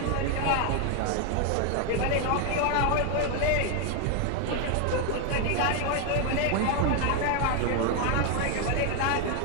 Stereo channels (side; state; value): both; different; correlation 0.01